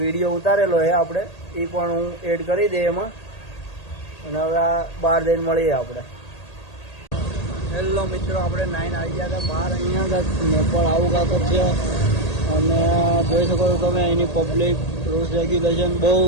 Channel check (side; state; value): right; late; 1.8 ms